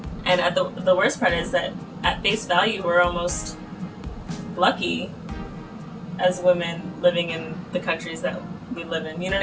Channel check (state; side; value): identical; both; correlation 1.00